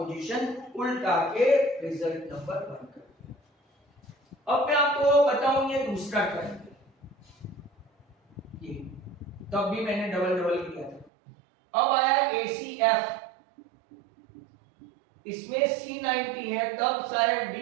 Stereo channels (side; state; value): left; drops out; at 11.1 s